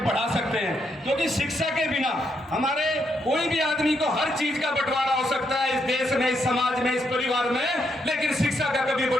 सकते हैं, क्योंकि शिक्षा के बिना हमारे कोई भी आदमी को हर चीज का बंटवारा हो सकता है इस देश में, इस समाज में, इस परिवार में, लेकिन शिक्षा का कभी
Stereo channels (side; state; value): both; normal; correlation 0.78